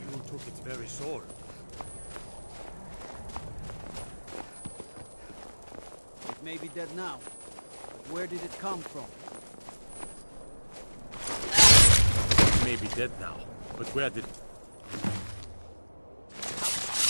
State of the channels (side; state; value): both; inverted; correlation -1.00